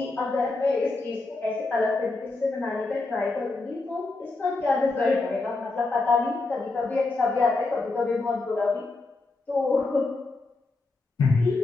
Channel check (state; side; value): quieter; right; 3.4 dB